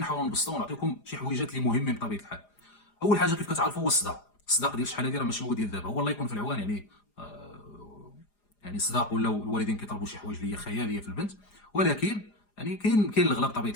نبسطوا ونعطيكم شي حويجات اللي مهمين بطبيعه الحال. اول حاجه كيف كتعرفوا هو الصداق ديال شحال هذه راه ماشي هو ديال دابا، هو الله يكون في العوان يعني. يعني الصداق ولاو الوالدين كيطلبوا شي حوايج اللي هي خياليه في البنت، ولكن يعني كاين الغلا بطبيعه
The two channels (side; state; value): right; late; 4.9 ms